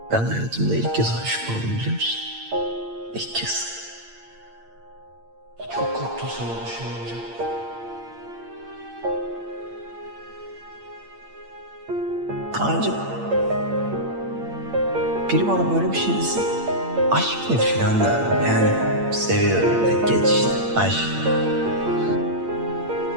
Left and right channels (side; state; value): left; late; 8.8 ms